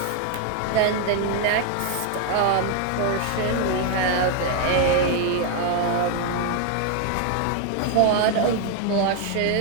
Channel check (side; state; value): both; different; correlation 0.00